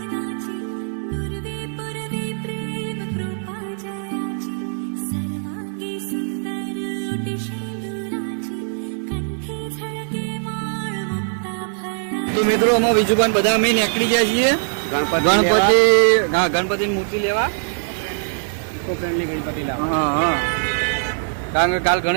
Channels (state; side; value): silent; left; 56 dB below the other